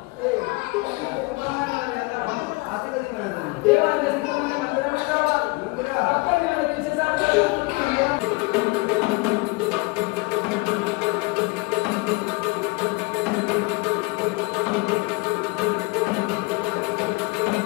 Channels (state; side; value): quieter; right; 25.4 dB